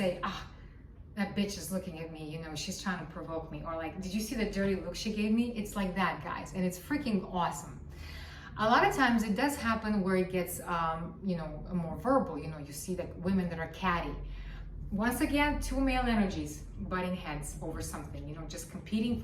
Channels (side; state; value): both; identical; correlation 1.00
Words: that bitch is looking at me, you know, she's trying to provoke me. Or like, did you see the dirty look she gave me? It's like that, guys. And it's freaking awesome. A lot of times it does happen where it gets, you know, more verbal. You know, you see like women that are catty. Once again, two male energies butting heads over something, you know, just competing